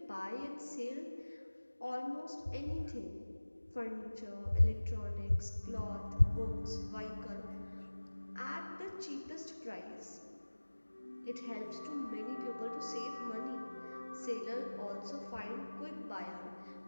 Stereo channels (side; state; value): both; inverted; correlation -1.00